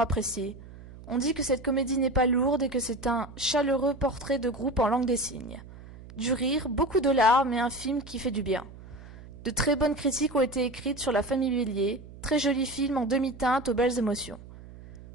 On dit que cette comédie n'est pas lourde et que c'est un chaleureux portrait de groupe en langue des signes. Du rire, beaucoup de larmes et un film qui fait du bien. De très bonnes critiques ont été écrites sur La famille Bélier, très joli film en demi-teinte aux belles émotions.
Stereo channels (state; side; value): noise; right; hum, 17 dB below the sound